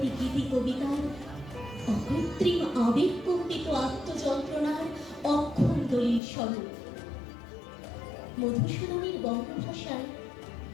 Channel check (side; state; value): right; drops out; at 6.2 s